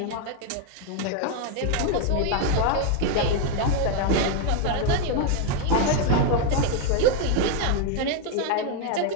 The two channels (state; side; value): different; both; correlation 0.01